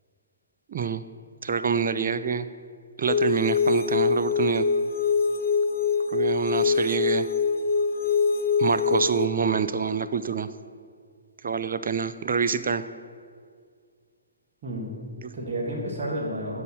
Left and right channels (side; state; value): both; inverted; correlation -0.47